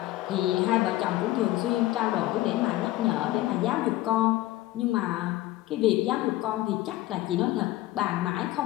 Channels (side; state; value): right; quieter; 16.6 dB